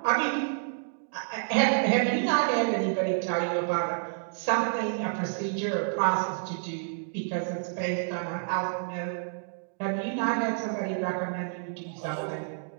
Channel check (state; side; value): silent; left; digital silence